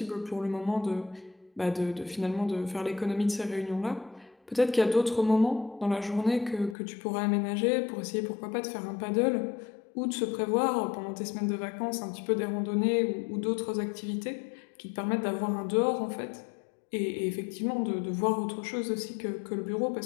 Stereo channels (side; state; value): right; drops out; at 6.8 s